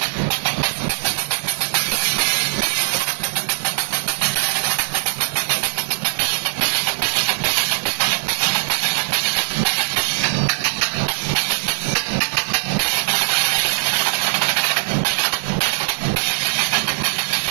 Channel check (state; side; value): silent; left; digital silence